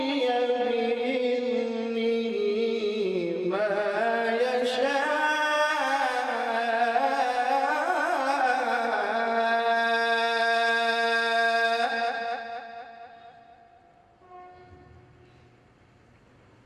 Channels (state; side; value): identical; both; correlation 1.00